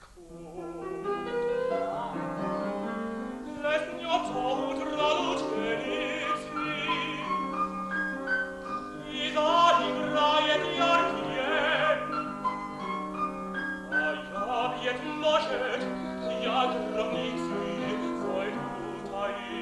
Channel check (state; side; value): identical; both; correlation 1.00